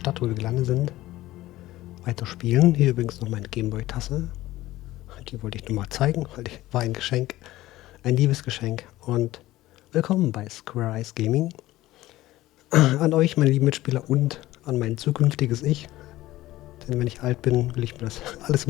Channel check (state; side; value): quieter; right; 16.5 dB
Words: wo wir gelandet sind, weiterspielen. Hier übrigens noch meine Gameboy-Tasse. Die wollte ich nur mal zeigen, weil die war ein Geschenk. Ein Liebesgeschenk. Und willkommen bei Squareeyes Gaming. An euch, meine lieben Mitspieler, und an mein zukünftiges Ich. Denn wenn ich alt bin, will ich mir das alles